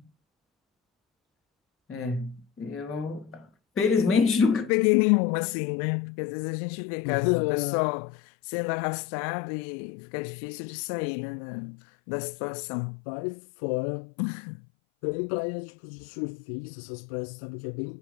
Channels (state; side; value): drops out; right; at 4.7 s